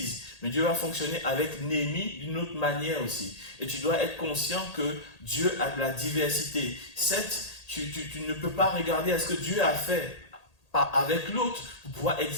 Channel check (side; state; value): right; late; 1.8 ms